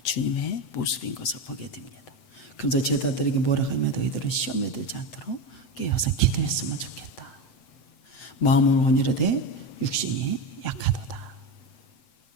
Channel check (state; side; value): late; right; 7.6 ms